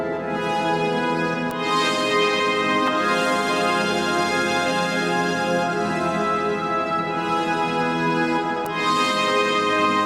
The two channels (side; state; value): both; identical; correlation 1.00